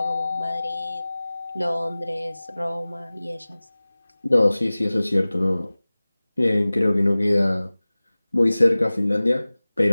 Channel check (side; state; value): both; inverted; correlation -0.99